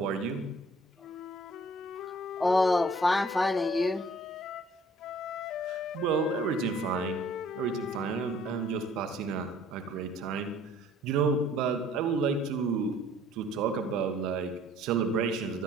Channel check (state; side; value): normal; both; correlation 0.56